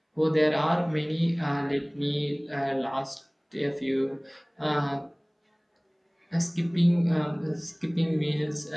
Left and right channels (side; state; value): both; identical; correlation 1.00